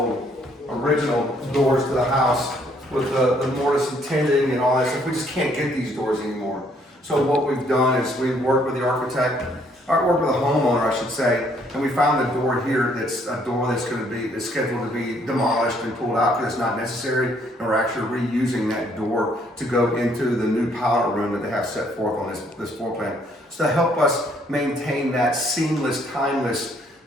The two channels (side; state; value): both; normal; correlation 0.66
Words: original doors to the house with the mortise and tinting and all that stuff. We just can't get these doors anymore. So what we've done is we've worked with the architect, or worked with the homeowner, I should say, and we found a door here that's a door that's scheduled to be demolished and pulled out because it's not necessary, and we're actually reusing that door to go into the new powder room that they have set forth on this floor plan. So to help us maintain that seamless, timeless,